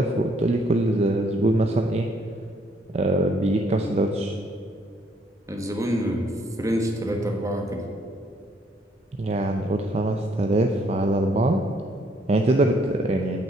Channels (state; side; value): normal; both; correlation 0.67